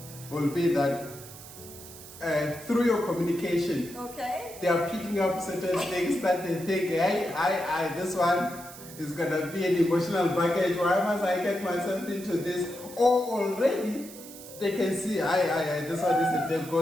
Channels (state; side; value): noise; right; hiss, 16 dB below the sound